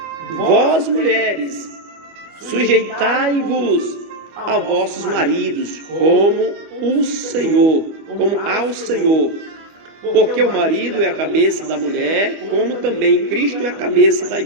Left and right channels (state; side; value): late; left; 25 ms